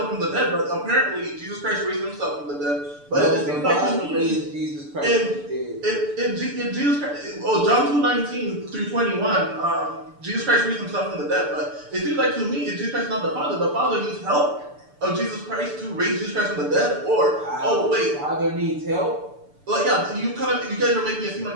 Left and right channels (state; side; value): late; left; 6.8 ms